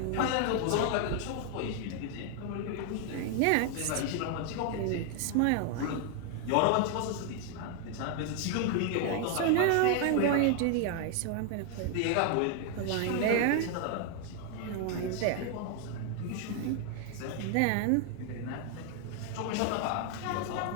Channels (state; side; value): different; both; correlation 0.00